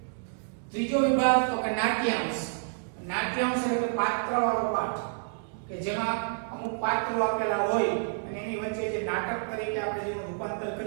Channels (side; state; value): left; silent; digital silence